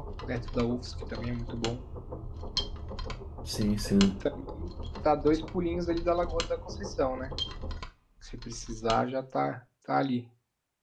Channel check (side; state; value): both; identical; correlation 1.00